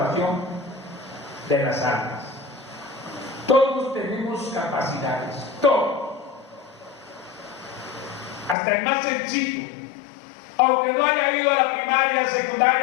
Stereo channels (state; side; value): drops out; right; at 8.6 s